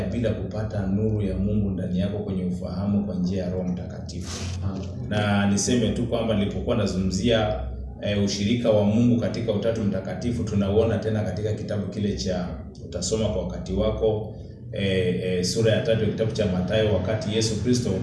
bila kupata nuru ya Mungu ndani yako kwenye ufahamu kwa njia ya Roho Mtakatifu. Na niseme tu kwamba nilipokuwa nazungumzia ushirika wa Mungu katika Utatu Mtakatifu, tunauona tena katika kitabu kile cha utasoma kwa wakati wako, sura ya 3 kitabu cha Mathayo, wakati Yesu Kristo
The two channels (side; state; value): both; identical; correlation 1.00